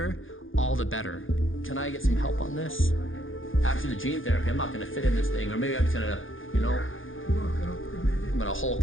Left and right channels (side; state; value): right; late; 0.58 ms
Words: all the better. Can I get some help on this? After the gene therapy, I'm not gonna fit in this thing, or maybe I'm just gonna, you know, I'm gonna Hulk